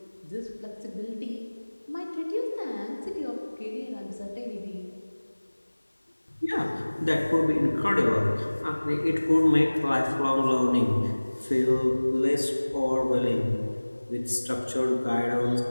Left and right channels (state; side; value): inverted; both; correlation -1.00